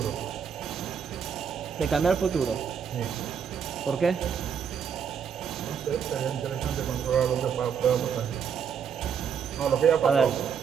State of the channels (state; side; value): quieter; left; 7.3 dB